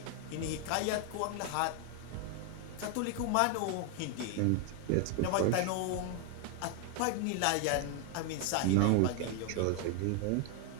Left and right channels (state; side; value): different; both; correlation 0.01